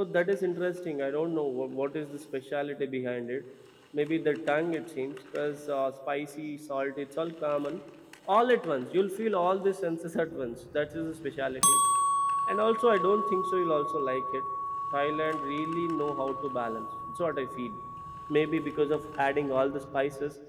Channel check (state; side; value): identical; both; correlation 1.00